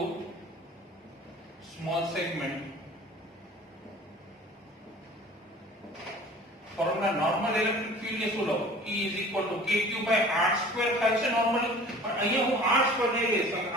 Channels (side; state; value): both; normal; correlation 0.45